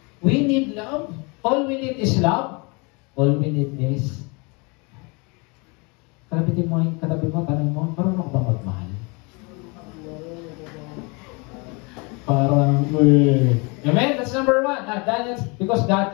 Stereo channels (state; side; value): quieter; right; 29.9 dB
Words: We need love. All we need is love. All we need is katabi mo, tanong mo, marunong ba magmahal? Parang, amen? That's number one. That's because